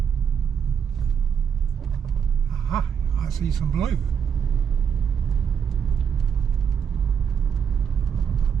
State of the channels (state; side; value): quieter; left; 7.4 dB